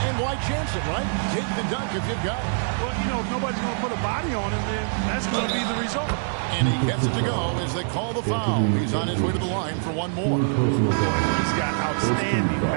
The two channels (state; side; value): silent; left; digital silence